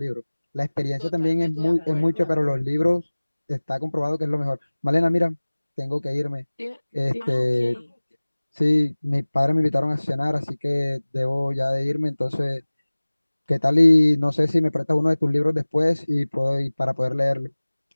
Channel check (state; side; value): inverted; both; correlation -1.00